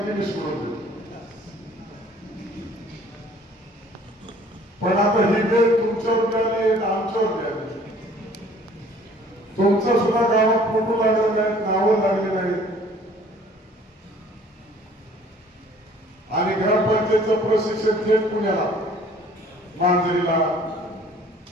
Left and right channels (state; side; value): normal; both; correlation 0.54